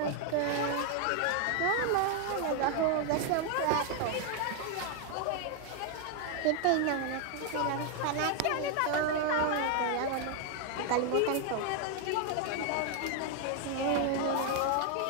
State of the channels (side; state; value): both; different; correlation 0.00